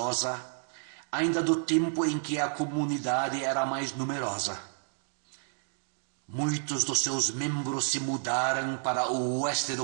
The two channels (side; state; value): left; silent; digital silence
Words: ainda do tempo em que a comunidade era mais numerosa. Muitos dos seus membros se mudaram para o oeste